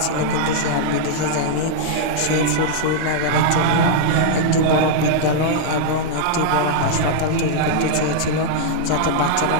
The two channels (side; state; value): both; different; correlation -0.01